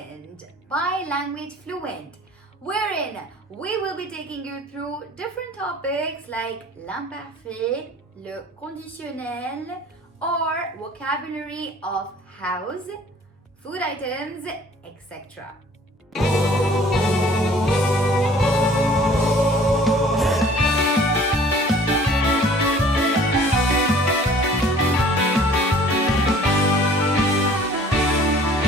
by Langauge FLuent, wherein we will be taking you through different topics like l'imparfait, le conditionnel, or vocabulary of house, food items, etc.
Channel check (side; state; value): both; normal; correlation 0.51